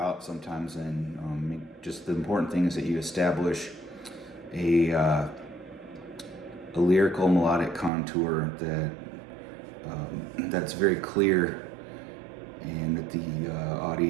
sometimes, and just the important thing is that you establish a lyrical melodic contour that's very clear, and that the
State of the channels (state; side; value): drops out; left; at 7.9 s